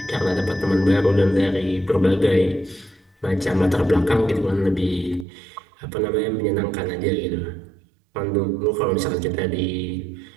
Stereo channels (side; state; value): left; drops out; at 5.2 s